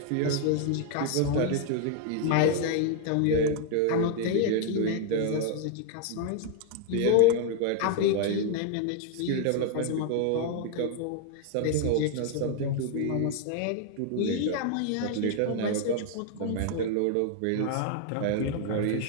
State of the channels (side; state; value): both; different; correlation 0.00